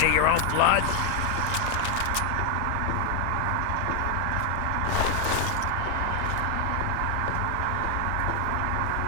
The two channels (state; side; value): different; both; correlation 0.00